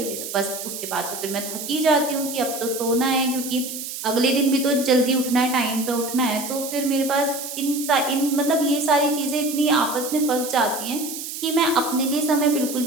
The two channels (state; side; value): noise; right; hiss, 8 dB below the sound